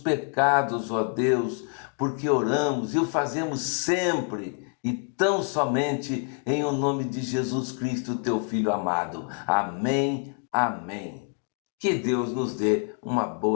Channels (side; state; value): right; quieter; 40.0 dB